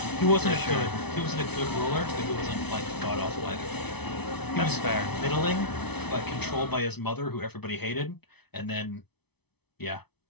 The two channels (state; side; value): late; right; 0.99 ms